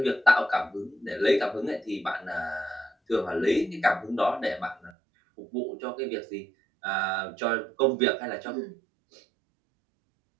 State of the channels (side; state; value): left; drops out; at 4.9 s